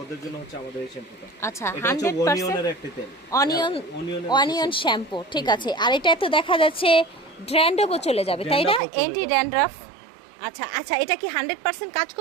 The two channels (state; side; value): drops out; left; at 8.8 s